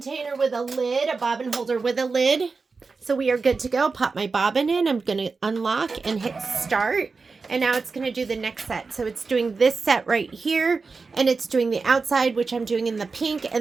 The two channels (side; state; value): left; quieter; 4.4 dB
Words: with a lid, a bobbin holder with a lid. So we are good to go. Pop my bobbin in. I'm going to unlock and hit start. And now it's going to do the next set. So it's doing this set right here. And it's doing the outside, which I'm doing in the pink.